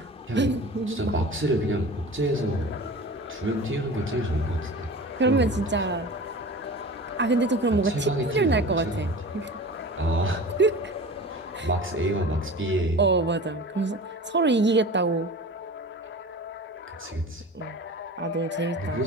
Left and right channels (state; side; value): normal; both; correlation 0.36